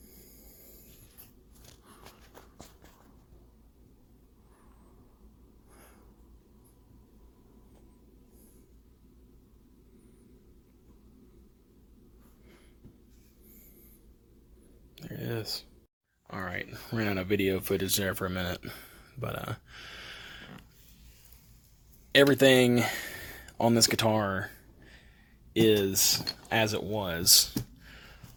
ran out of video footage there for a minute. But everything on this guitar is as it was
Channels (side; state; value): both; identical; correlation 1.00